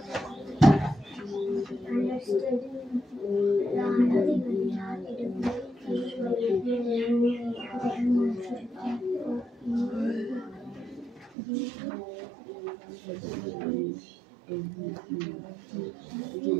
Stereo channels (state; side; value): drops out; left; at 11.4 s